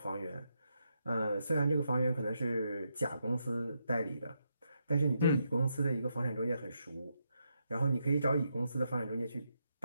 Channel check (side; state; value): both; inverted; correlation -0.81